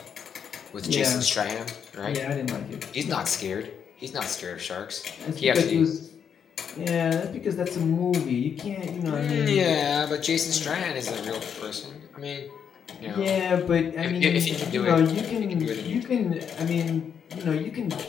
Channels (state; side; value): quieter; right; 7.6 dB